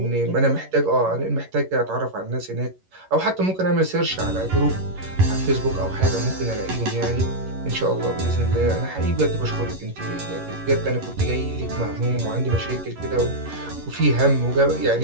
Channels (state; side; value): late; left; 11 ms